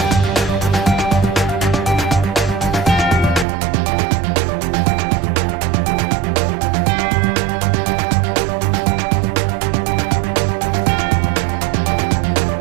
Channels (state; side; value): drops out; left; at 3.5 s